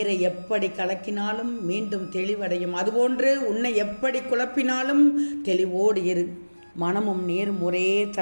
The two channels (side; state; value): both; inverted; correlation -1.00